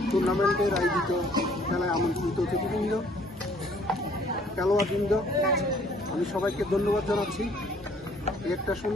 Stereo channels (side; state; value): both; normal; correlation 0.59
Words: টুর্নামেন্টের আয়োজিত খেলায় আমন্ত্রিত অতিথিবৃন্দ, খেলোয়াড়বৃন্দ, আমি সবাইকে ধন্যবাদ জানাচ্ছি। একটা